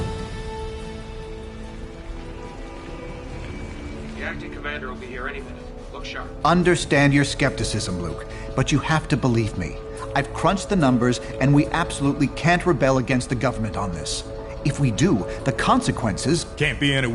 The acting commander will be here any minute. Look sharp. Understand your skepticism, Luke, but you have to believe me. I've crunched the numbers, and we absolutely can't rebel against the government on this. If we do, the consequences... Can't be any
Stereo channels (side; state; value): both; identical; correlation 1.00